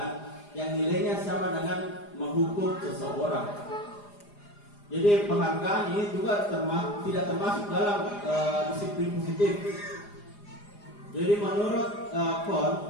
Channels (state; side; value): late; right; 4.9 ms